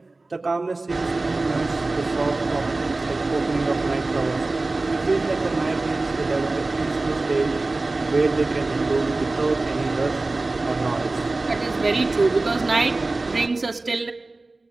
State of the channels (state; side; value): quieter; left; 3.2 dB